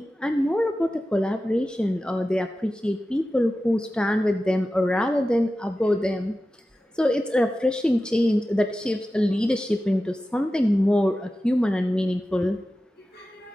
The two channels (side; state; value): both; normal; correlation 0.94